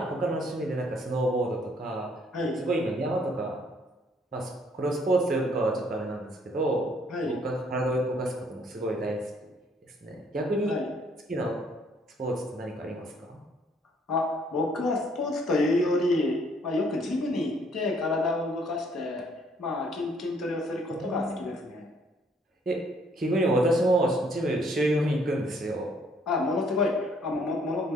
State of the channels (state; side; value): normal; both; correlation 0.64